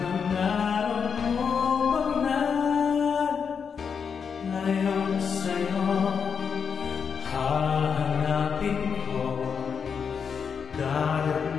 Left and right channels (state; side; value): quieter; right; 6.4 dB